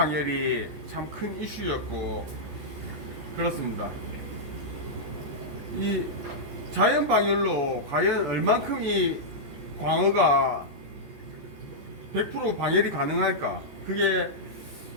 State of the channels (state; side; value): late; left; 14 ms